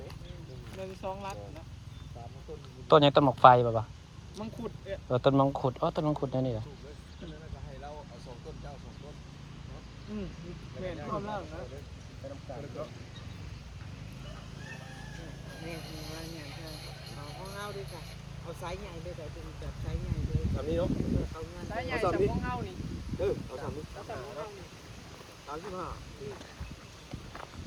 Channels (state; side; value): identical; both; correlation 1.00